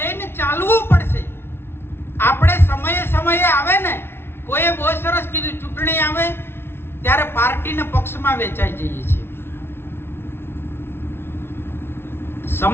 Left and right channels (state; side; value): late; right; 0.12 ms